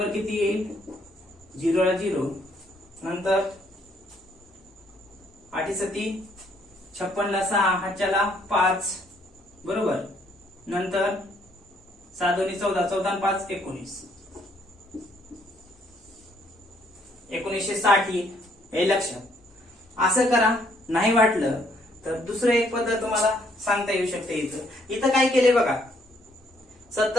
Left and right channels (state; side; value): normal; both; correlation 0.68